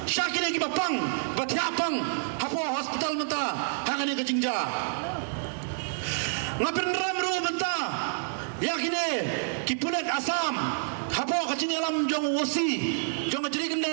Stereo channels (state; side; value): silent; left; digital silence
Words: syakir ki bapang batiapang hapo hospital menta hakane ke jingja ngapin ramru menta yakine ki pulet asam hapo kacing alam jong wosi jong jadi